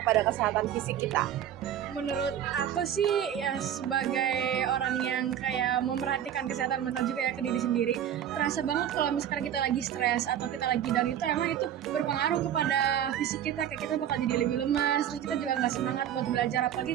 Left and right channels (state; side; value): quieter; left; 10.1 dB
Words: kepada kesehatan fisik kita? Menurut aku sih ya sebagai orang yang kayak memperhatikan kesehatan mental juga ya ke diri sendiri, terasa banget kalau misalkan kita lagi stres atau kita lagi down itu emang itu berpengaruh kepada fisik kita, kayak kita bakal jadi lebih lemas, terus kita juga nggak semangat buat belajar apalagi